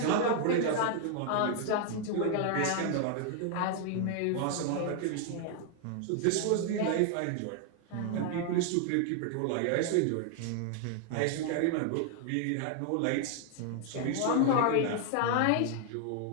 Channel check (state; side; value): different; both; correlation 0.00